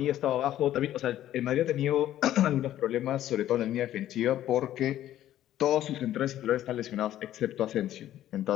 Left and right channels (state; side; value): quieter; right; 12.6 dB